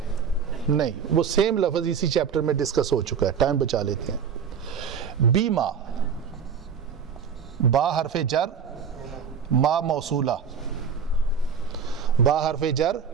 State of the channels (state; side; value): quieter; left; 6.8 dB